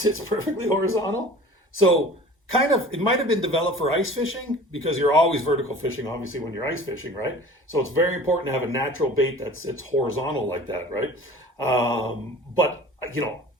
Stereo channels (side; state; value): both; normal; correlation 0.43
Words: perfectly horizontal? So kind of, it might have been developed for ice fishing because you're always vertical fishing, obviously, when you're ice fishing, right? So it's very important to have a natural bait that sits horizontal like that, right? But, you know,